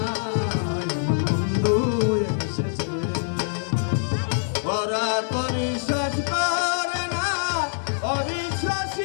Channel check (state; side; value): silent; right; digital silence